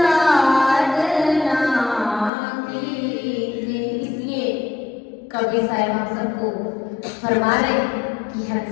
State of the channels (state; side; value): drops out; right; at 2.3 s